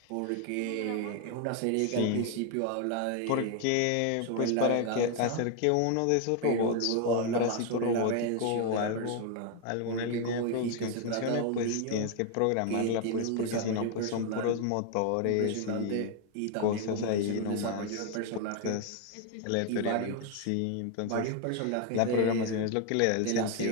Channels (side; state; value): both; different; correlation 0.01